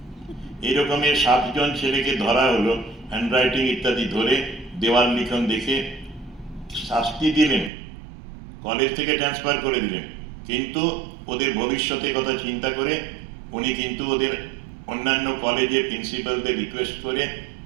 এরকমের 7 জন ছেলেকে ধরা হলো, হ্যান্ডরাইটিং ইত্যাদি ধরে, দেওয়াল লিখন দেখে শাস্তি দিলেন, কলেজ থেকে ট্রান্সফার করে দিলেন, কিন্তু ওদের ভবিষ্যতের কথা চিন্তা করে উনি কিন্তু ওদের অন্যান্য কলেজে প্রিন্সিপালদের রিকোয়েস্ট করে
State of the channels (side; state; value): left; drops out; at 7.7 s